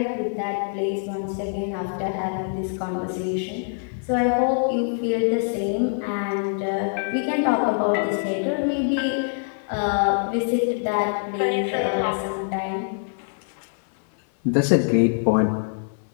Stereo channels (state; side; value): silent; right; 62 dB below the other